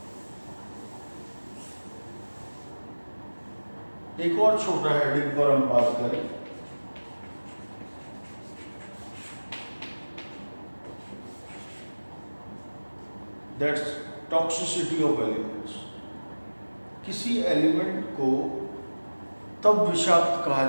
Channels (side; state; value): both; inverted; correlation -1.00